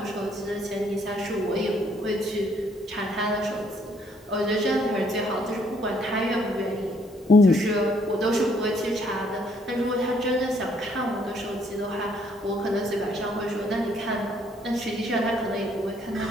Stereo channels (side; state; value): both; normal; correlation 0.67